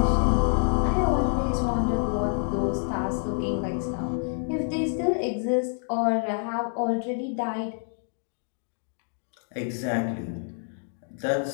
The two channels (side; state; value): right; silent; 58 dB below the other